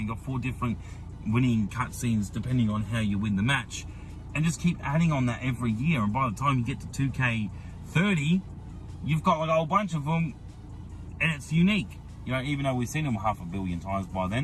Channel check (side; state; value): both; identical; correlation 1.00